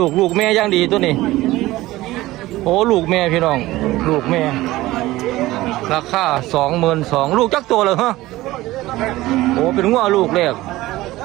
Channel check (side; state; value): left; quieter; 17.7 dB